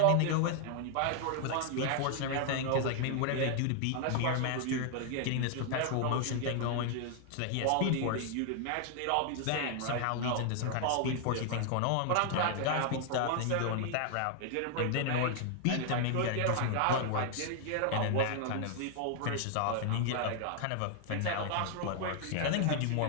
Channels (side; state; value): both; different; correlation 0.00